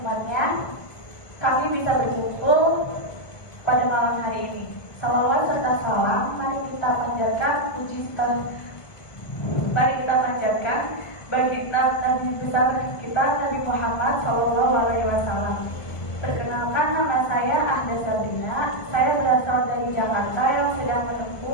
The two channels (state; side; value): late; right; 1.5 ms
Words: kami bisa berkumpul pada malam hari ini. Salawat serta salam mari kita panjatkan bagi Nabi besar kita Nabi Muhammad SAW. Perkenalkan, nama saya Ahda Sabrina. Saya berasal dari Jakarta yang sedang